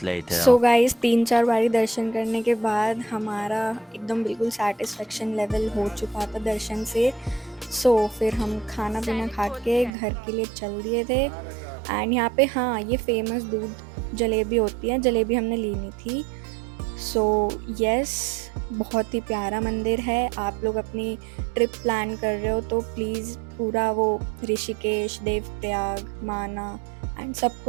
later. So guys 3-4 बारी दर्शन करने के बाद हमारा एकदम बिल्कुल सेटिस्फेक्शन लेवल हो चुका था दर्शन से। सो फिर हम खाना पीना खा के घर के लिए चल दिए थे एंड यहाँ पे हाँ ये फेमस दूध जलेबी होती है, जलेबी हमने लेनी थी। सो यस, बहुत ही प्यारा मंदिर है। आप लोग अपनी ट्रिप प्लान कर रहे हो तो प्लीज़ पूरा वो ऋषिकेश, देवप्रयाग, माना एंड सब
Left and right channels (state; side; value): drops out; left; at 9.9 s